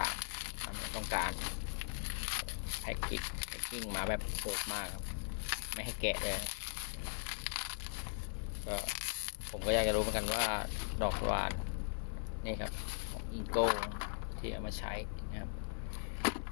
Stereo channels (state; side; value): silent; right; 52 dB below the other